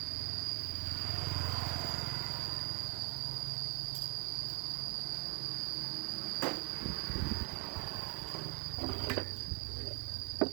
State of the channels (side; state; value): left; quieter; 32.6 dB